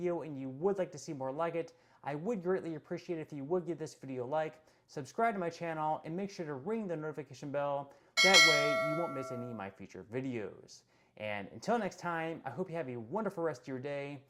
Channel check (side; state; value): both; identical; correlation 1.00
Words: and you would like to see more like it, I would greatly appreciate it if you would give this video a like, subscribe to my channel, and make sure to ring the notification bell. That way you won't miss any of my future videos. And until next time, I hope you have a wonderful rest of your day,